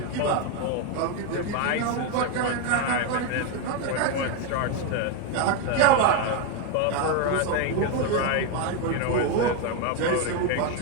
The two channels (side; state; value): both; different; correlation 0.02